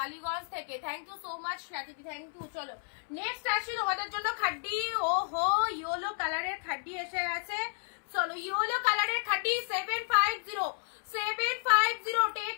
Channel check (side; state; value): right; silent; 56 dB below the other